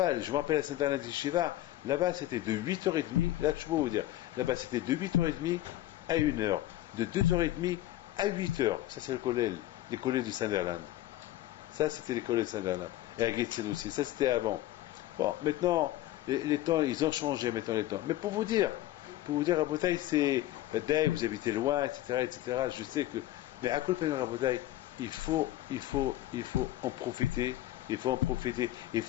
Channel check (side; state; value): right; quieter; 14.8 dB